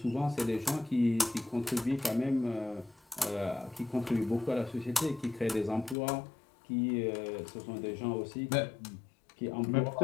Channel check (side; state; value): right; drops out; at 6.0 s